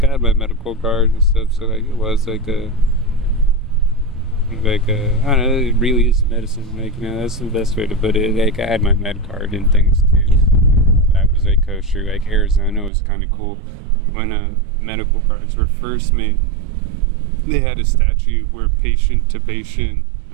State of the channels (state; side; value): drops out; left; at 12.9 s